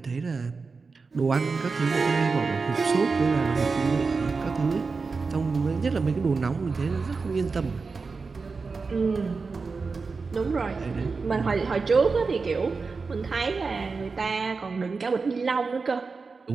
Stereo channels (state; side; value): quieter; left; 4.5 dB